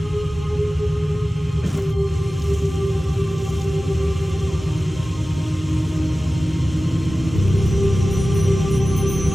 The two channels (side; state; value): both; normal; correlation 0.96